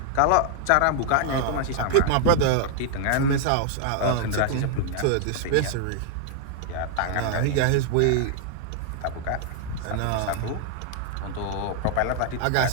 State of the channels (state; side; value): different; both; correlation 0.00